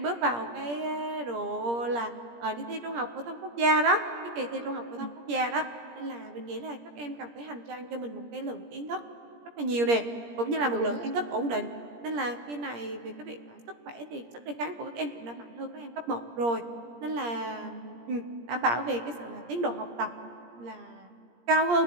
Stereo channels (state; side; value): late; left; 17 ms